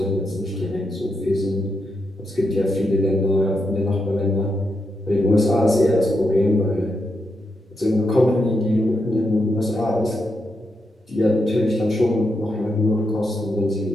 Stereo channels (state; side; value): normal; both; correlation 0.83